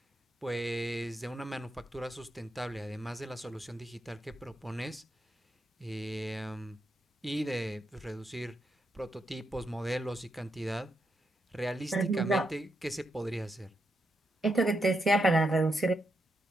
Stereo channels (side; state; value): both; normal; correlation 0.82